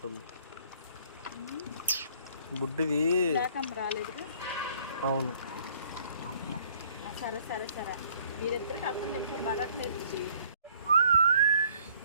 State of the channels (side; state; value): both; inverted; correlation -0.60